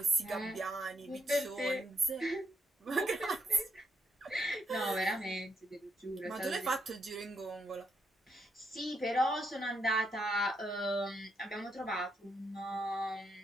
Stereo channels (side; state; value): both; normal; correlation 0.78